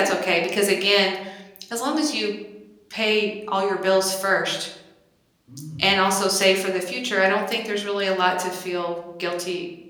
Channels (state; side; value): identical; both; correlation 1.00